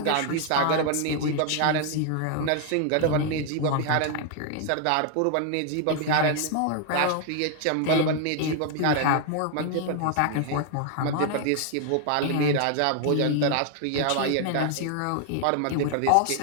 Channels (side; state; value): both; different; correlation 0.00